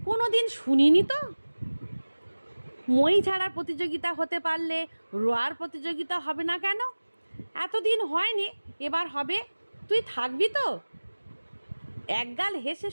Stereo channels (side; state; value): both; inverted; correlation -1.00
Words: কোনো দিন শুনিনি তো। মই ছাড়ার প্রতিযোগিতা হতে পারলে রোয়ার প্রতিযোগিতা হবে না কেন? এতদিন হয়নি, এবার হবে। তুই থাকবি তো? একগাল হেসে